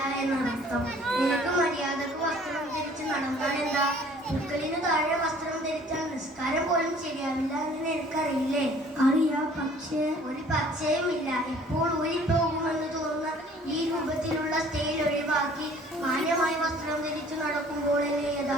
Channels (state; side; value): normal; both; correlation 0.54